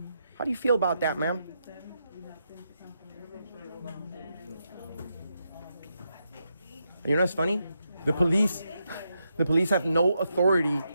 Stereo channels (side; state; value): both; inverted; correlation -0.83